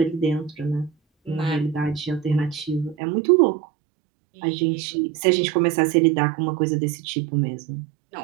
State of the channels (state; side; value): drops out; left; at 3.0 s